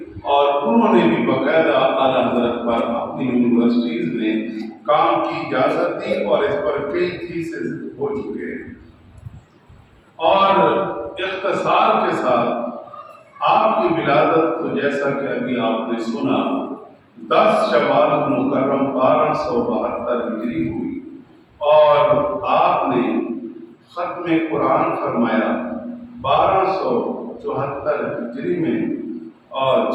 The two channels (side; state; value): both; identical; correlation 1.00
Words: اور انہوں نے بھی باقاعدہ اعلیٰ حضرت پر اپنی یونیورسٹیز میں کام کی اجازت دی اور اس پر کئی تھیسز ہو چکے ہیں۔ اور اختصار کے ساتھ آپ کی ولادت تو جیسا کہ ابھی آپ نے سنا 10 شوال مکرم 1272 ہجری ہوئی، اور آپ نے ختم قرآن فرمایا 1274 ہجری میں اور